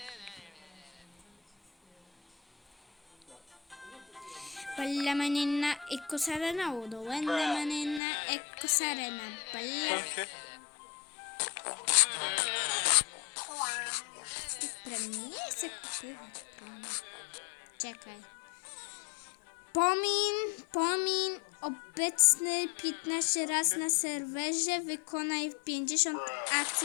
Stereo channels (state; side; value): drops out; right; at 8.0 s